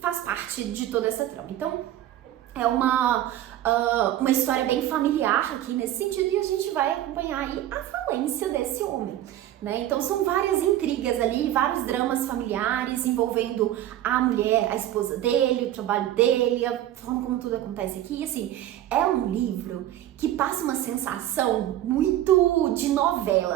faz parte de toda essa trama. Então é uma história bem familiar aqui nesse sentido, e a gente vai acompanhar aí a falência desse homem, né? Então são várias intrigas ali, vários dramas familiares envolvendo a mulher, a esposa dele, o trabalho dele, a forma como tudo acontece aqui. E assim, é um livro que passa uma sensação muito de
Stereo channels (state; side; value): quieter; left; 12.9 dB